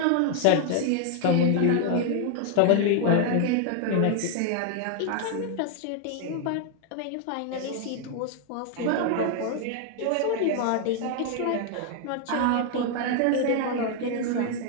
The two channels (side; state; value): both; different; correlation 0.00